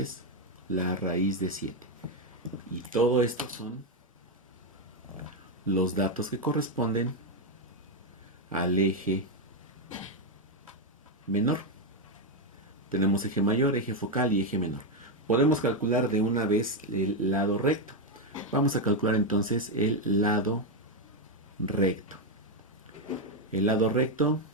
la raíz de 7. Y todo esto son los datos que corresponden al eje menor. Tenemos eje mayor, eje focal y eje menor. Podemos calcular de una vez el lado recto. Vamos a calcular entonces el lado recto. El lado recto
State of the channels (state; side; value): normal; both; correlation 0.04